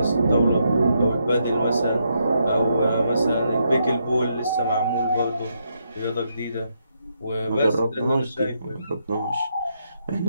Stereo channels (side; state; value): both; inverted; correlation -0.79